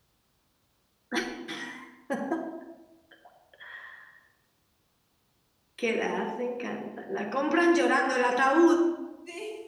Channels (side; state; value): both; identical; correlation 1.00